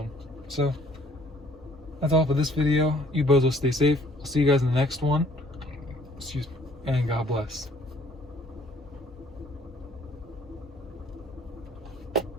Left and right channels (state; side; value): normal; both; correlation 0.59